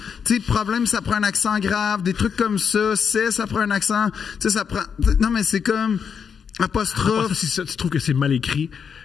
tu sais, problème, ça prend un accent grave, des trucs comme ça, ça prend un accent, tu sais, ça prend, non, mais c'est comme, apostrophe. Si tu trouves que c'est mal écrit,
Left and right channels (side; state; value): right; quieter; 6.8 dB